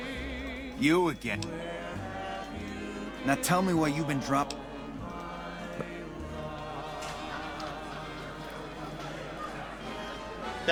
You again. Now tell me why you've been dropped.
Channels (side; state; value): both; identical; correlation 1.00